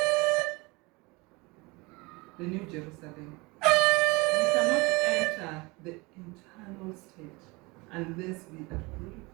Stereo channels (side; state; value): left; quieter; 25.1 dB